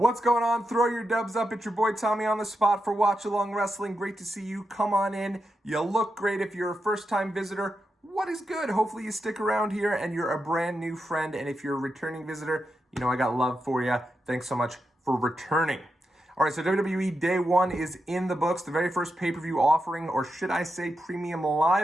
going on? Throw your dubs up. It's your boy Tommy on the spot for Watchalong Wrestling. Great to see you. Come on in. You look great if you're a first-time visitor. What is good? Hopefully you stick around here and you're a brand new friend. And if you're a returning visitor, you know I got love for you. Thanks so much for returning. All right, so WWE Day 1 is in the books. The very first pay-per-view offering, or should I say premium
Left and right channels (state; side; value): normal; both; correlation 0.87